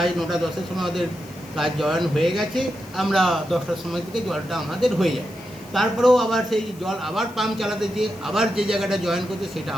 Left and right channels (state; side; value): noise; left; hiss, 24 dB below the sound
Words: 9টা 10-এর সময় ওদের কাজ জয়েন হয়ে গেছে, আমরা 10টার সময় থেকে জলটা আমাদের হয়ে যায়। তারপরেও আবার সেই জল আবার পাম্প চালাতে যেয়ে আবার যে জায়গাটা জয়েন করছে সেটা